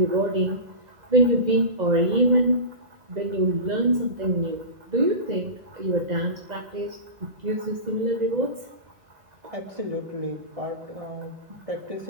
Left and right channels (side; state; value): left; late; 2.0 ms